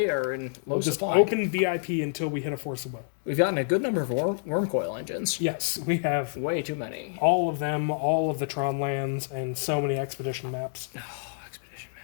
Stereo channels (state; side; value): silent; right; 59 dB below the other